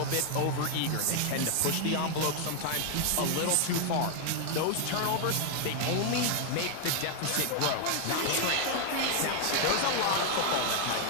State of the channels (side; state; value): both; different; correlation 0.00